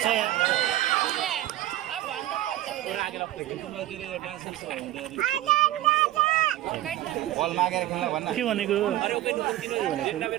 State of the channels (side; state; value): left; quieter; 14.8 dB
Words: बल मागेर खेल्न भन्न के भनेको